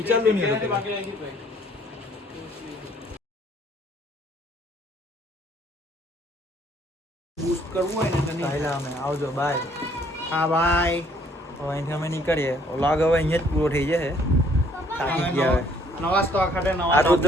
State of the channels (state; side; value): normal; both; correlation 0.62